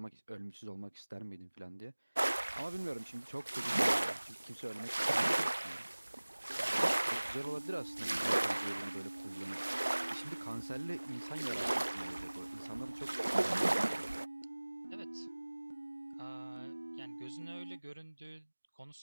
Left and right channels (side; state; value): both; inverted; correlation -1.00